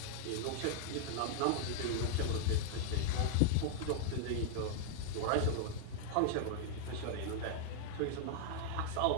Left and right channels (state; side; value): different; both; correlation -0.01